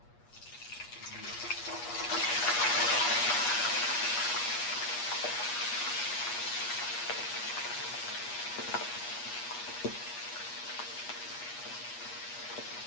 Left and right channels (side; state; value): right; late; 8.3 ms